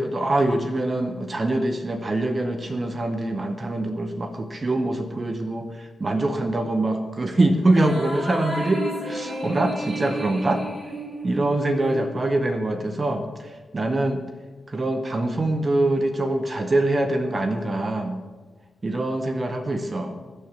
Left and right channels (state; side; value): normal; both; correlation 0.92